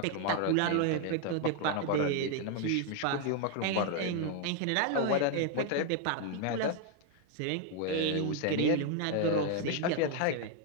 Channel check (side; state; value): both; different; correlation 0.01